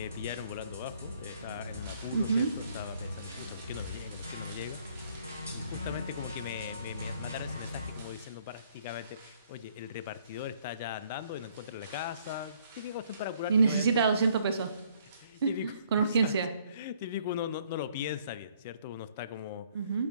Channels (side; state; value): both; inverted; correlation -0.64